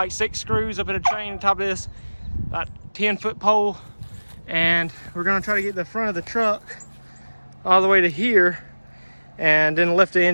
6 screws up in a train on top of this about 10-foot pole, and we're gonna try to get the front of the truck all the way to here and then lift the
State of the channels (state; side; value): inverted; both; correlation -1.00